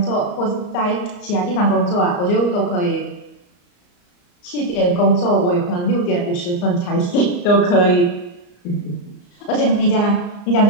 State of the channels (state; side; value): late; right; 34 ms